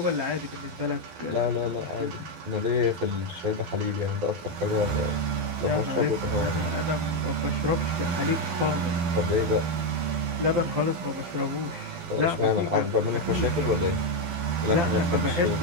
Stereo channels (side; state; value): left; late; 12 ms